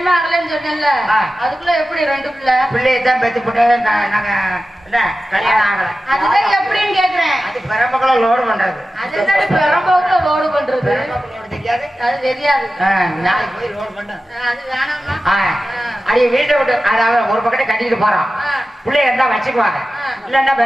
ஆகலன்னு சொன்னேன்ல, அதுக்குள்ள எப்படி 2 பிள்ளை? பிள்ளையை தான் பெத்து போட்டு நாங்க என்ன கல்யாணம் ஆகல. அதுதான் எப்படின்னு கேக்குறேன். அது பெரம்பக்குள்ள லோடு பண்றது. அதுதான் பெரம்பக்குள்ள லோடு பண்றது. பெரம்பக்குள்ள தெரியாது, அது தெரியாது. நாளைக்கு போய் லோடு பண்ண. அது வேணாமா? அடி வீட்டை விட்டு அதாவது ஒரு பக்கத்தை கட்டிட்டு போறோம். பிள்ளைய இருந்தா வச்சுக்குவாங்க, இல்லன்னா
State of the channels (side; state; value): both; normal; correlation 0.94